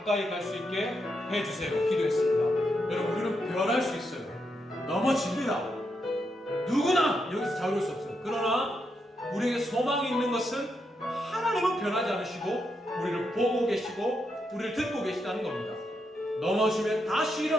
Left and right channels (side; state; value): both; normal; correlation 0.82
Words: 갈 수 있게 해주세요. 기도했습니다. 여러분 우리는 변할 수 있어요. 넘어집니다. 누구나 여기서 자유로울 수 없어요. 그러나 우리에게 소망이 있는 것은 하나님은 변하지 않으시고 우리를 보고 계시고 우리를 듣고 계시다는 겁니다. 넘어지면 다시